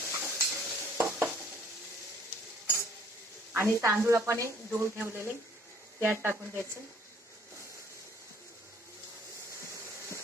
आणि तांदूळ आपण धुवून ठेवलेले त्यात टाकून द्यायचे.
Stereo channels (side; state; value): both; normal; correlation 0.58